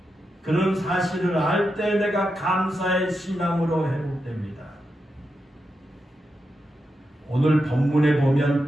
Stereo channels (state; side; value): normal; both; correlation 0.87